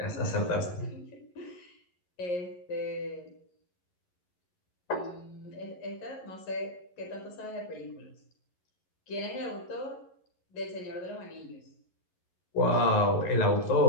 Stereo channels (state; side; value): late; right; 11 ms